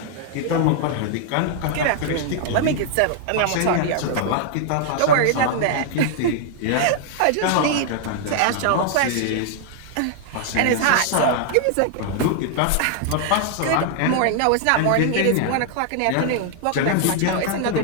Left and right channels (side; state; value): both; different; correlation 0.00